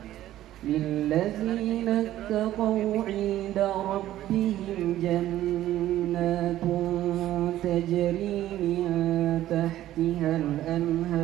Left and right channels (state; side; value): quieter; left; 13.6 dB